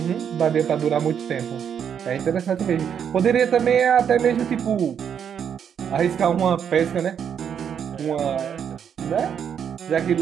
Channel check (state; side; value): quieter; left; 8.1 dB